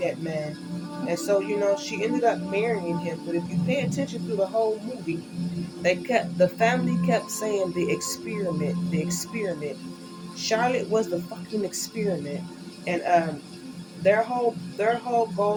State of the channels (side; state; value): both; identical; correlation 1.00